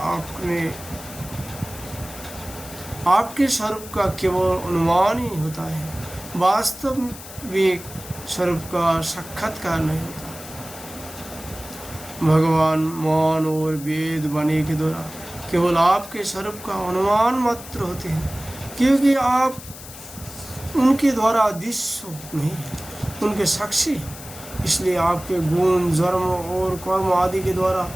आपके स्वरूप का केवल अनुमान ही होता है, वास्तविक स्वरूप का साक्षात्कार नहीं होता। भगवान मौन और वेद वाणी के द्वारा केवल आपके स्वरूप का अनुमान मात्र होते हैं, क्योंकि आप उनके द्वारा दृश्य नहीं, उनके साक्षी हैं। इसलिए आपके गुण जन्म और कर्म आदि के द्वारा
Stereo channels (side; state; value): left; noise; hiss, 15 dB below the sound